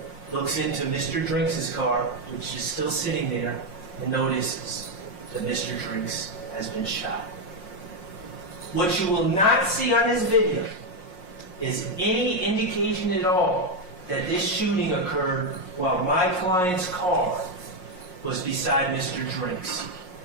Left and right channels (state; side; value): late; right; 5.6 ms